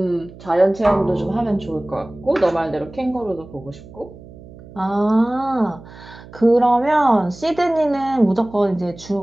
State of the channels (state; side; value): noise; right; hum, 19 dB below the sound